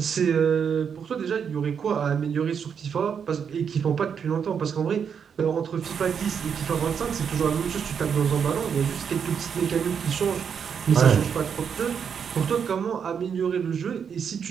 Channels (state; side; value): quieter; left; 7.1 dB